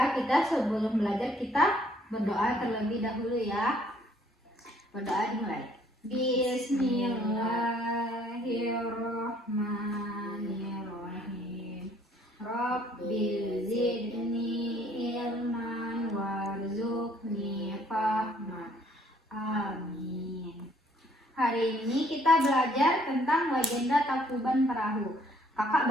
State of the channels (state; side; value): normal; both; correlation 0.62